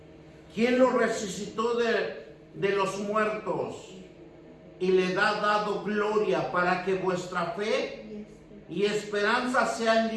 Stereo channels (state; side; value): identical; both; correlation 1.00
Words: quien lo resucitó de los muertos y le ha dado gloria, para que vuestra fe y esperanza sea en